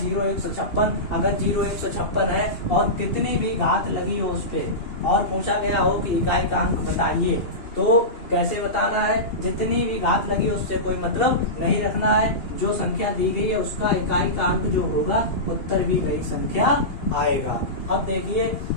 156। अगर 0, 156 है और कितनी भी घात लगी हो उस पे और पूछा गया हो कि इकाई का अंक बताइए, तो कैसे बताना है, जितनी भी घात लगी है उससे कोई मतलब नहीं रखना है, जो संख्या दी गई है उसका इकाई का अंक जो होगा उत्तर भी वही संख्या आएगा। अब देखिए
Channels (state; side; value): late; right; 2.9 ms